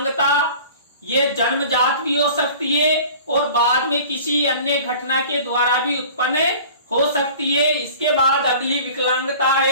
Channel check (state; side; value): inverted; both; correlation -0.44